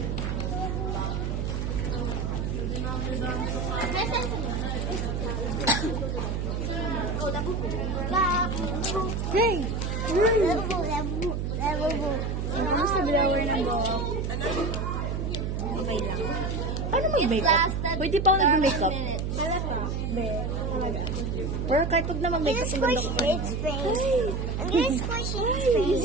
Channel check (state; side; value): noise; right; hum, 1 dB below the sound